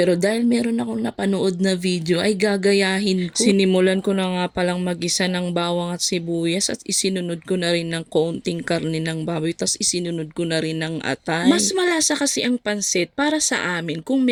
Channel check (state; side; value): identical; both; correlation 1.00